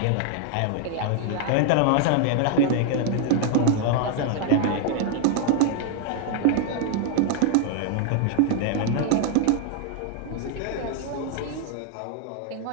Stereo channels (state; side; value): different; both; correlation 0.00